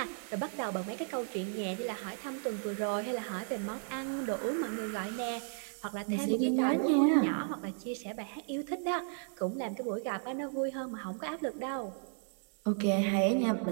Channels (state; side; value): silent; left; 55 dB below the other